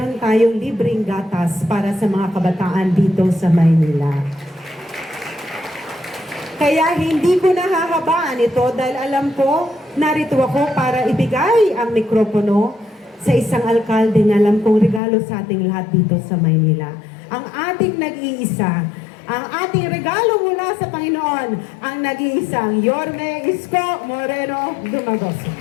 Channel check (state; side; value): drops out; right; at 15.0 s